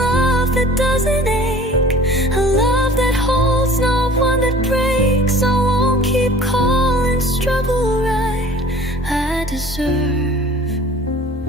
love that doesn't ache, a love that holds, not one that breaks. I won't keep calling struggle right. I deserve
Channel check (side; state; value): both; normal; correlation 0.47